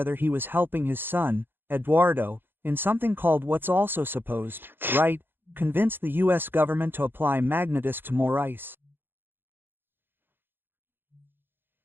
he was helping his son, Eduardo, in something called what's also supposed, right, convince the U.S. government to apply magnetics to more ice.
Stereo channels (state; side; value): late; left; 0.099 ms